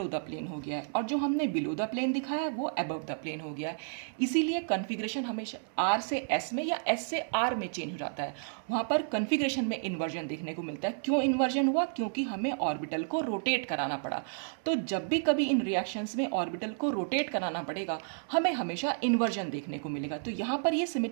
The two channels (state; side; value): silent; left; 57 dB below the other